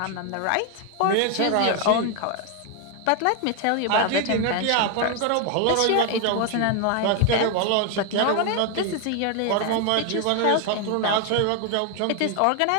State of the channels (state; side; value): different; both; correlation 0.01